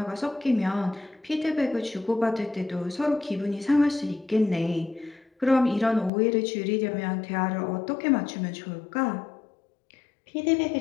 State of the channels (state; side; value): drops out; right; at 6.1 s